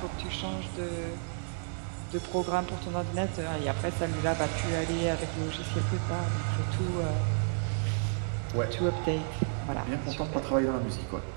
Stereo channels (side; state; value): left; silent; 57 dB below the other